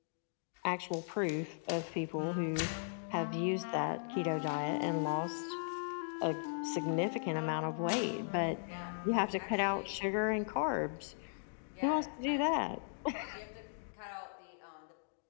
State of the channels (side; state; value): right; silent; digital silence